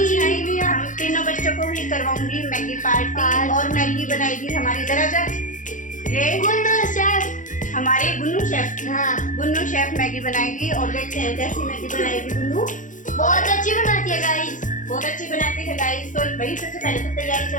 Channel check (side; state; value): right; late; 0.37 ms